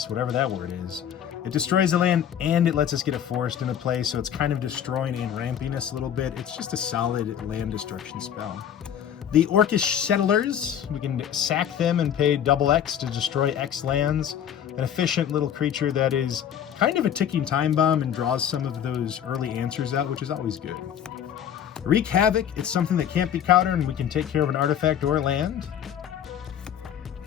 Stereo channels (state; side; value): quieter; right; 9.3 dB